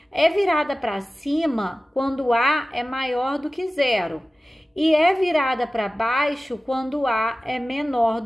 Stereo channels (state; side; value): normal; both; correlation 0.96